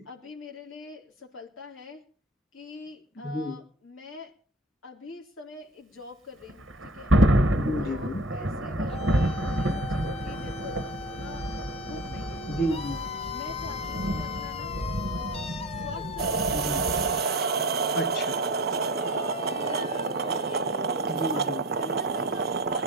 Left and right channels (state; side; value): normal; both; correlation 0.36